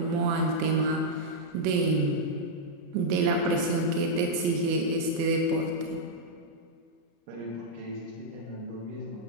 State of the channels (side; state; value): left; late; 34 ms